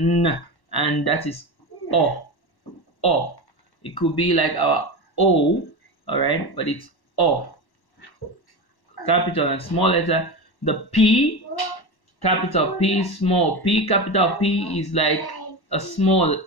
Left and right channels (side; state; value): right; late; 1.1 ms